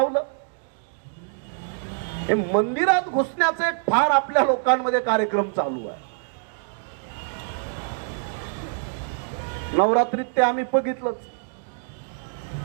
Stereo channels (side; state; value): left; silent; digital silence